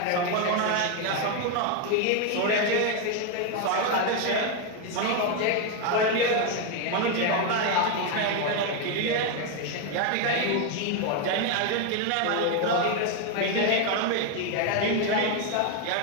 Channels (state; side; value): different; both; correlation 0.01